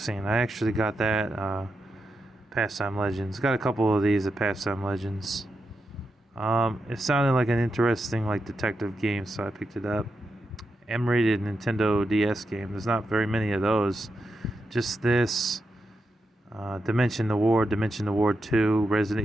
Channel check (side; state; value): both; normal; correlation 0.86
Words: I actually got that. Pastime Legends. Got a couple of these at Pastime Legends. It sounded like an interesting detective game, so I picked it up. M-rated Nintendo DS game. There's not very many of those. Just this. Dimension the Ward 2,